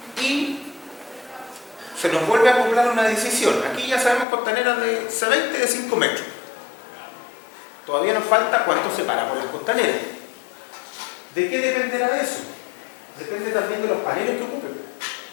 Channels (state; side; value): drops out; right; at 4.2 s